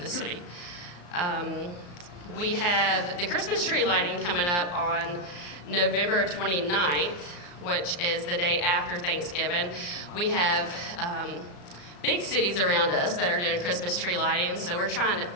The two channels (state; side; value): late; right; 34 ms